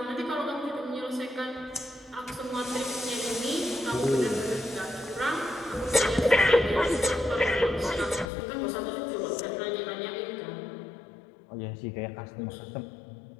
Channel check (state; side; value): drops out; right; at 8.3 s